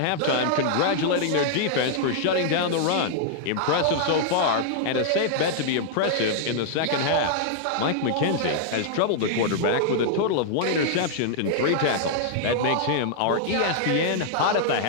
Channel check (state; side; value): different; both; correlation -0.01